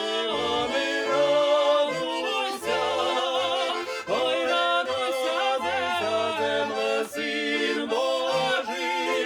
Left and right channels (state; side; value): identical; both; correlation 1.00